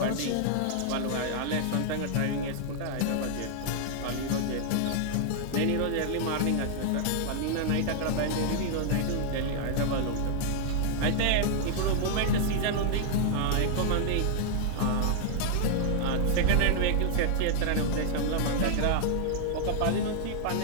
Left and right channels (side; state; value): both; different; correlation 0.00